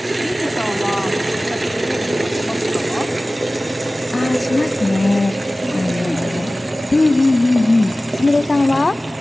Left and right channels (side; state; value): both; normal; correlation 0.97